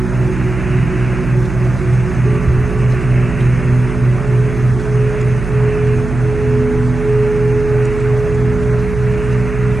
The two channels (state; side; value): noise; right; hum, 7 dB below the sound